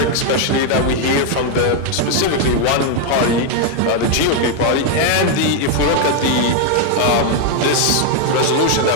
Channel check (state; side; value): different; both; correlation 0.01